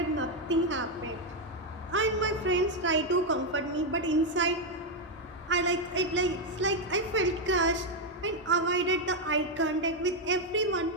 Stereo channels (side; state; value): both; normal; correlation 0.03